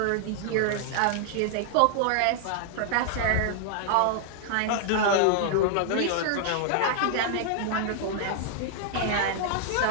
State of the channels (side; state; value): both; different; correlation -0.01